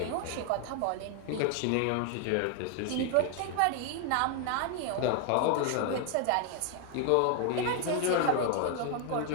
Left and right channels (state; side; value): different; both; correlation 0.01